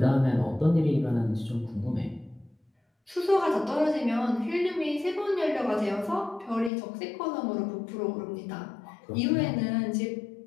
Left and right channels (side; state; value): right; drops out; at 6.7 s